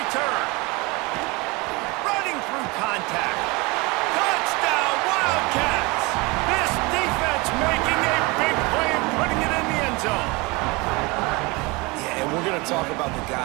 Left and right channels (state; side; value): quieter; left; 25.6 dB